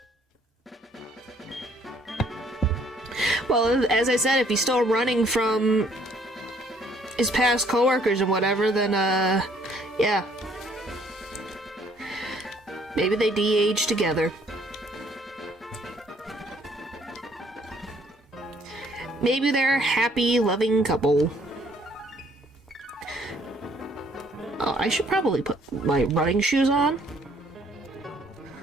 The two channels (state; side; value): normal; both; correlation 0.63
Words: Well, as I said, if he's still running from his past coworkers and whatever, then, yeah. Maybe they de-age together. Maybe they're a happy, loving couple. Oh, I should probably put my running shoes on.